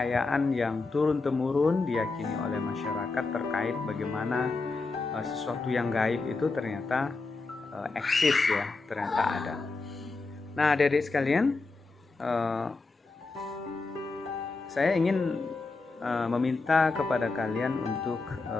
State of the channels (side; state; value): right; quieter; 3.8 dB